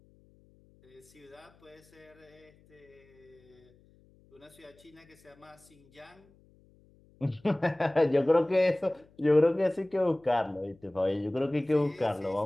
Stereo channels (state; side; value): noise; left; hum, 29 dB below the sound